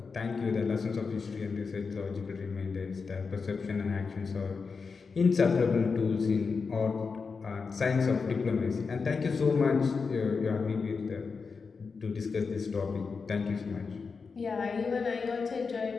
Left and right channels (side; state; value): right; quieter; 5.0 dB